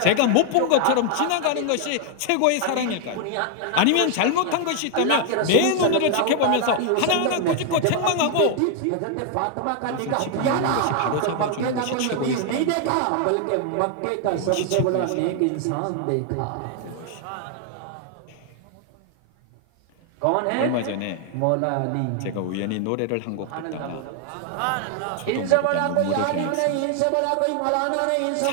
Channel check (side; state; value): both; different; correlation 0.00